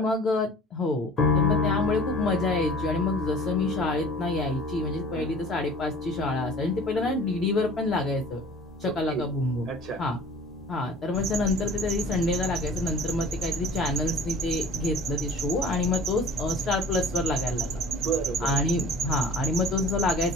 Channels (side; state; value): both; normal; correlation 0.45